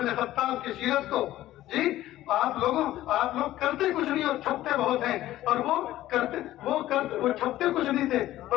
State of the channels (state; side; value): quieter; right; 14.6 dB